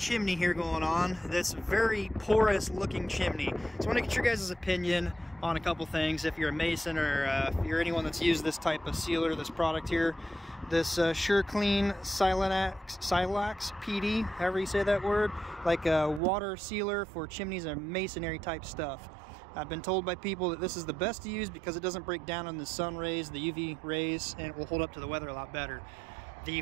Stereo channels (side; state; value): left; drops out; at 16.2 s